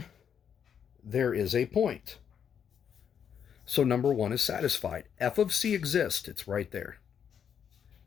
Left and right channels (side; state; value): right; quieter; 8.0 dB